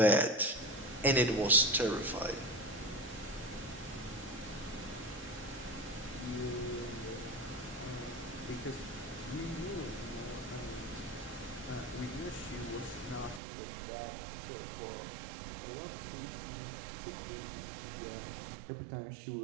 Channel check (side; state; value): left; drops out; at 13.4 s